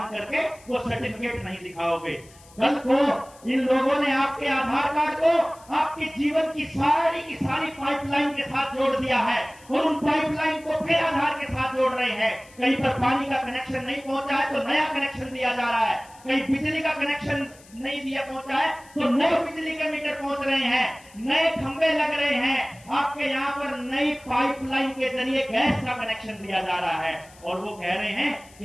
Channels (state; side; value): noise; left; hiss, 25 dB below the sound